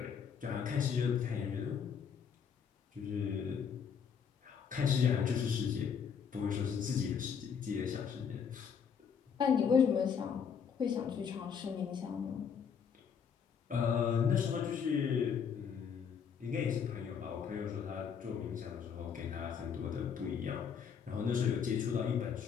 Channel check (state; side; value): quieter; right; 7.0 dB